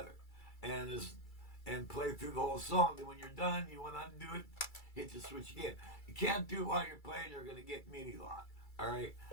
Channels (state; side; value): late; right; 2.3 ms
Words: and play through the whole song. Then when you're done, you want to undo it, hit the switch again. You can't do it while you're playing, you're going to get MIDI lock, all right?